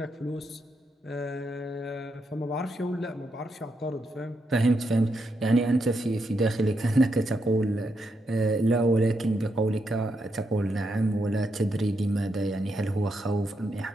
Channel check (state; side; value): normal; both; correlation 0.82